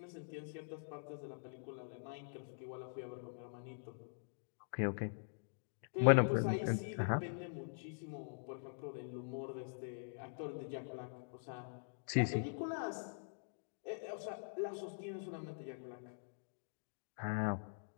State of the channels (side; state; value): right; silent; digital silence